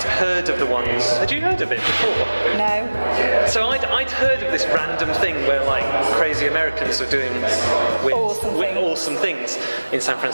heard of the ones. Had you heard of it before? No. So I'd heard of this random thing where like crazy Americans are doing awesome things in San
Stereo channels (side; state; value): both; inverted; correlation -1.00